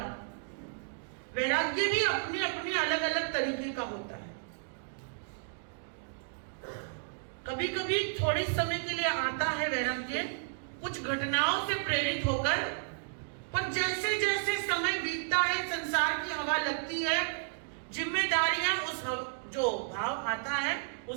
वैराग्य भी अपने अपने अलग अलग तरीके का होता है। कभी कभी थोड़े समय के लिए आता है वैराग्य, कुछ घटनाओं से प्रेरित होकर, पर जैसे जैसे समय बीतता है, संसार की हवा लगती है, जिम्मेदारियां उस जो भाव आता है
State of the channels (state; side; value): silent; left; digital silence